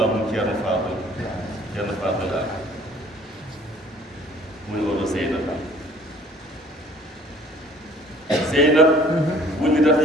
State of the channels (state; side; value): normal; both; correlation 0.54